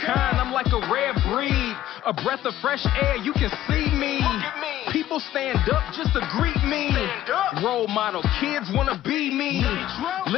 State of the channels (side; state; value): right; quieter; 13.3 dB